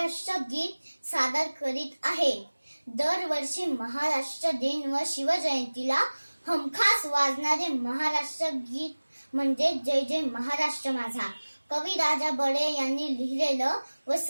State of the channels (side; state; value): both; inverted; correlation -1.00